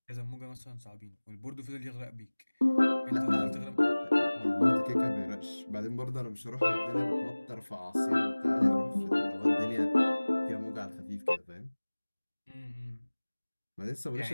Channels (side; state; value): both; inverted; correlation -1.00